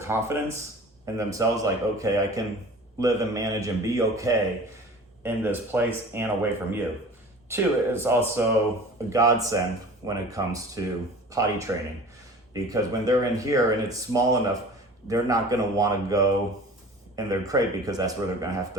in themselves, like, okay, I can live and manage and be okay in this place and away from you. Two, it's also a godsend when it comes to potty training, because when they're in here and it's small enough, they're not going to want to go in their crate because that's where they're going to have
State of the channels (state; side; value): normal; both; correlation 0.41